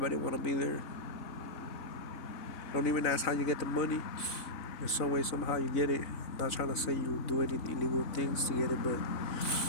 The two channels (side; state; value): right; late; 4.0 ms